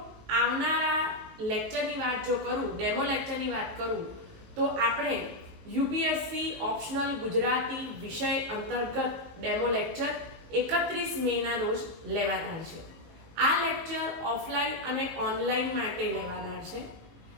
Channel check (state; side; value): late; left; 18 ms